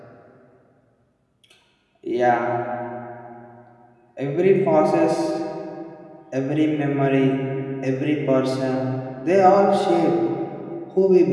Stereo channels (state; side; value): identical; both; correlation 1.00